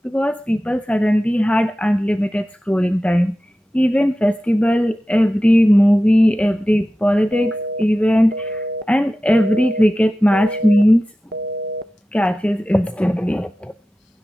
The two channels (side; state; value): both; normal; correlation 0.94